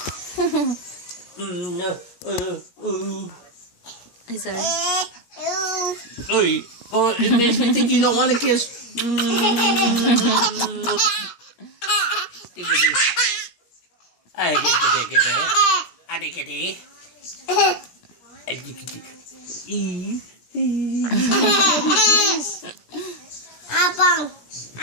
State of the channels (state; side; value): late; right; 17 ms